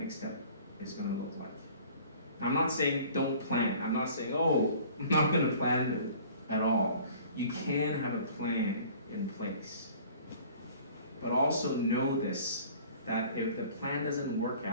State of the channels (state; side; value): inverted; both; correlation -0.49